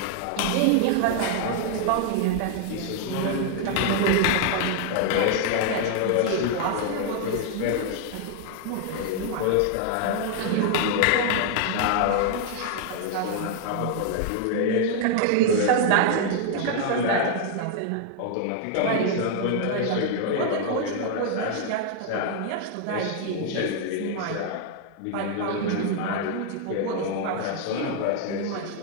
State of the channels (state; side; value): different; both; correlation 0.00